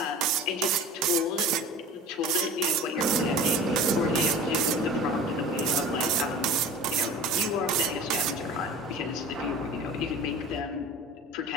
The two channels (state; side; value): normal; both; correlation 0.39